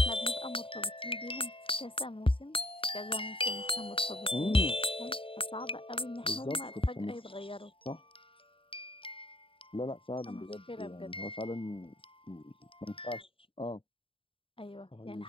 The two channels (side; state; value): right; late; 0.26 ms